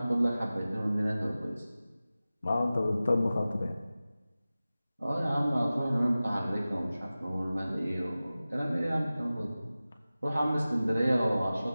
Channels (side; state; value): both; inverted; correlation -0.96